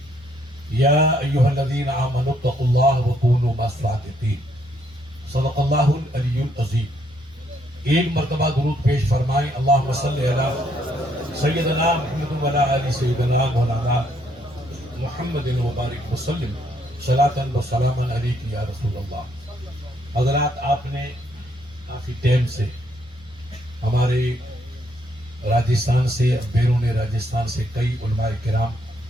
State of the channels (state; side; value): normal; both; correlation 0.71